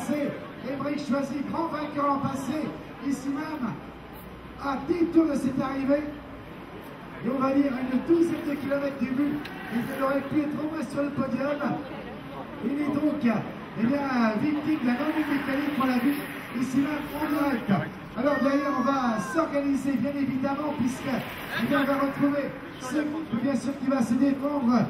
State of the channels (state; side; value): identical; both; correlation 1.00